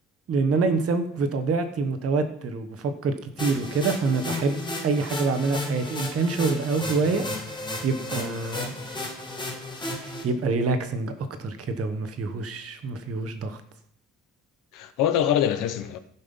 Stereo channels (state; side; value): normal; both; correlation 0.42